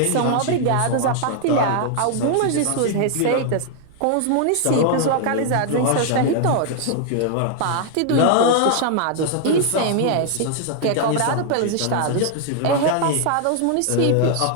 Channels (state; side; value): different; both; correlation 0.00